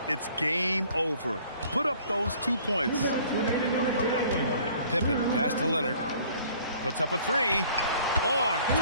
it's game over. Put up those 2 points. Pippen, pass to Leonard. Puts up a 3. On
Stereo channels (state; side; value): inverted; both; correlation -0.55